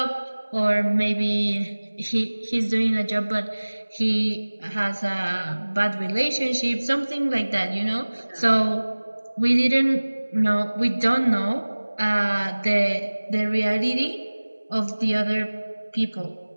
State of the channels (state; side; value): inverted; both; correlation -1.00